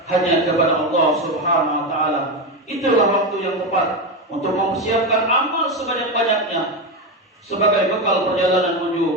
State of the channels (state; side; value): normal; both; correlation 0.14